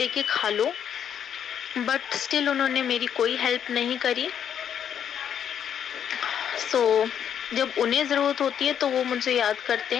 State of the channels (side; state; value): right; quieter; 8.8 dB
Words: खा लो। बट स्टिल उन्होंने मेरी कोई हेल्प नहीं करी। सो जब उन्हें ज़रूरत होती है तो वो मुझे याद करते